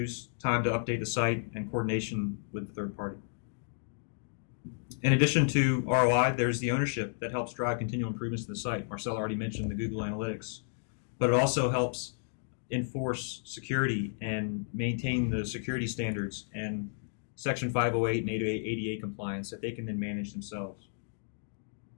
time to update the site and coordination with the third party. In addition to ROI, there's the ownership that helps drive continual improvements to the site. Marcella already mentioned the Google Analytics, but it also helps enforce security and maintain the security standards and Section 508 and 888 compliance that they can then manage themselves.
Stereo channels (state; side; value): silent; right; digital silence